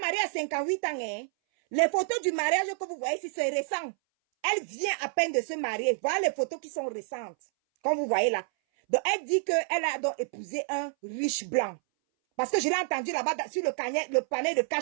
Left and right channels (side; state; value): left; silent; 59 dB below the other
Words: mariée à 58 ans, hein. Les photos du mariage que vous voyez ici, c'est récent. Elle vient à peine de se marier. Voilà les photos qui sont récentes. Comme vous voyez là. Donc, elle dit qu'elle a donc épousé un riche blanc. Parce que je l'ai entendu là-bas sur le panel de